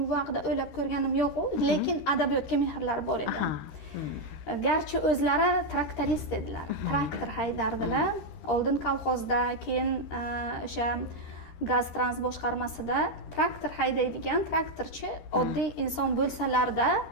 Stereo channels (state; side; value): late; right; 13 ms